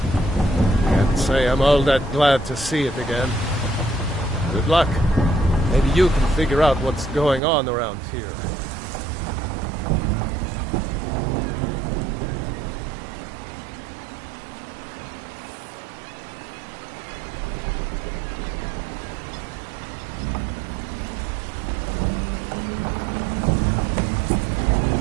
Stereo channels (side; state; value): left; drops out; at 7.4 s